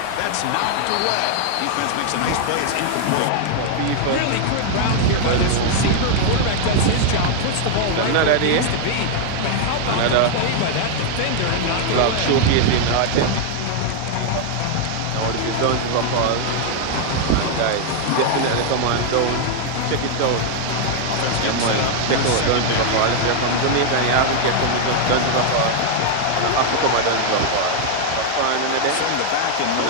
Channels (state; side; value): different; both; correlation 0.00